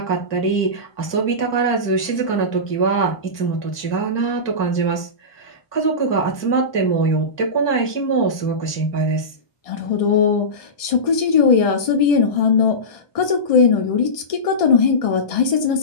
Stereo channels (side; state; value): right; late; 1.6 ms